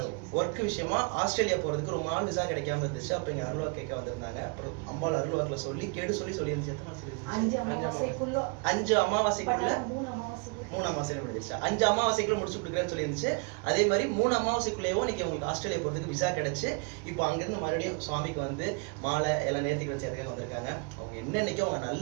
ஒர்க் விஷயமா ஆஸ்திரேலியா போகிறதுக்கு ரொம்ப நாள் விசா கிடைக்காம இருந்துச்சு. அப்போ இங்கே அருள்வாக்கு கேட்க வந்திருந்தாங்க. அப்புறம் அம்பாள் அருள்வாக்கில் சொல்லி சொல்லியிருந்துச்சு. எத்தனை நாள்? 5 அமாவாசைக்குள்ள 3 அமாவாசையில முடிஞ்சிருச்சு. 5 அமாவாசைக்குள்ள முடிச்சு கொடுக்குறேன்னு சொல்லியிருந்துச்சு. அதே மாதிரி 3 அமாவாசைக்குள்ளேயோ இன்னைக்கு உங்களுக்கு ஆஸ்திரேலியா போகிறதுக்கு விசா கிடைச்சு இப்போ அங்கேருந்து மறுபடியும் சுவாமிக்கு வந்து மாலை எல்லாம் நேர்த்தி வச்சு அதுக்காக வந்திருக்காங்க. அவங்க என்னன்னைக்கு அவங்க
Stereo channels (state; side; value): quieter; left; 34.6 dB